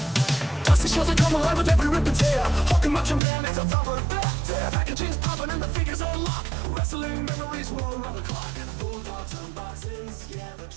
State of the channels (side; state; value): left; drops out; at 3.2 s